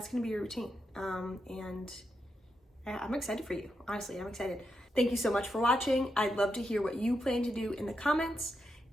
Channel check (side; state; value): both; normal; correlation 0.84